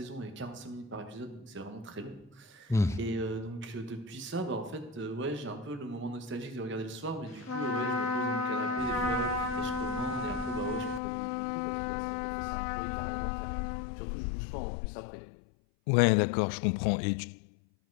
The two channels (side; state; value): right; drops out; at 11.0 s